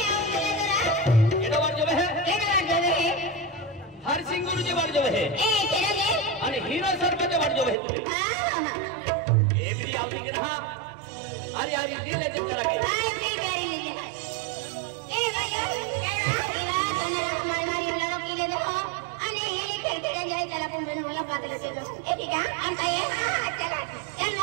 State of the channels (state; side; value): drops out; left; at 7.8 s